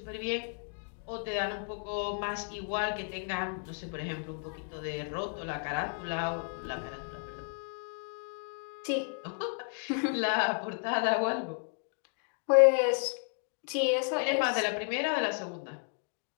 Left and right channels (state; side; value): silent; right; 56 dB below the other